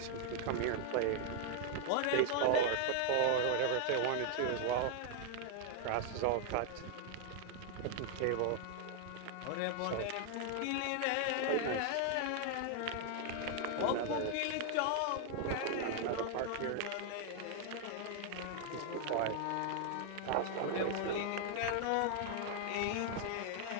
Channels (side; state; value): both; different; correlation 0.00